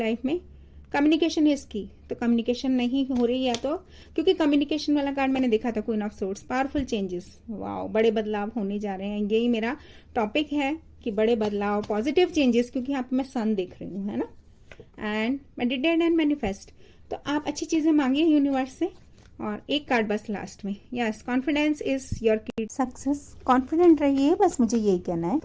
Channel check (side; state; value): both; identical; correlation 1.00